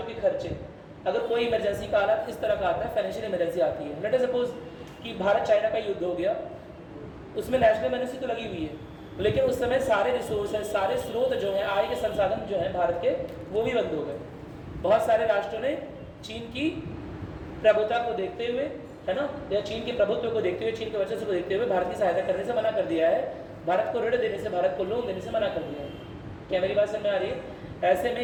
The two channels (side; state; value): both; identical; correlation 1.00